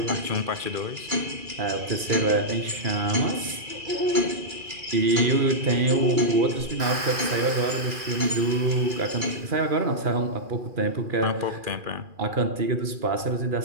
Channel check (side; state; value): left; late; 2.4 ms